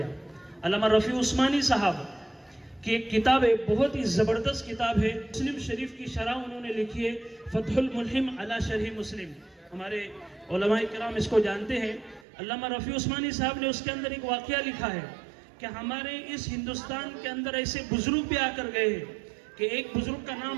अल्लामा रफ़ी उस्मानी साहब की एक किताब है, बहुत ही ज़बरदस्त किताब है, मुस्लिम शरीफ की शरह उन्होंने लिखी है, फतहुल मुल्हिम अला शरह मुस्लिम। हमारे उलमाए किराम इसको जानते हैं। अल्लामा रफ़ी उस्मानी साहब ने उसके अंदर एक वाक़या लिखा है कि हमारे इस हिंदुस्तान के अंदर ऐसे बुजुर्ग भी आकर गए हैं कि एक बुजुर्ग का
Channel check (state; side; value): drops out; left; at 12.2 s